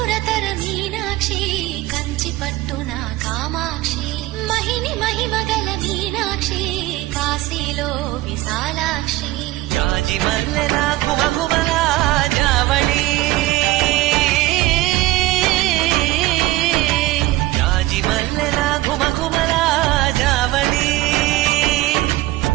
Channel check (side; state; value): left; quieter; 17.7 dB